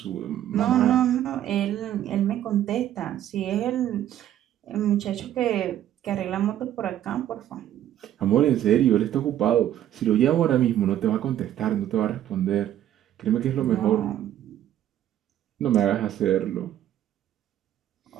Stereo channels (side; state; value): left; quieter; 11.7 dB